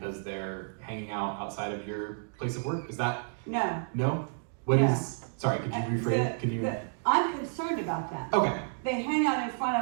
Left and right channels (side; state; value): left; silent; digital silence